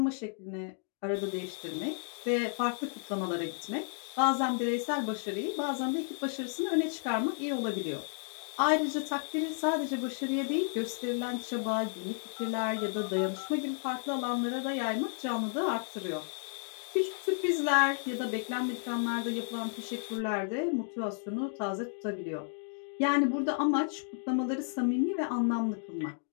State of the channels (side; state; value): right; silent; 56 dB below the other